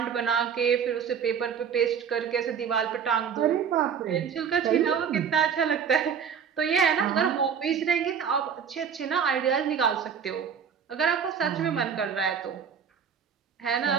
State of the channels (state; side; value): quieter; left; 7.3 dB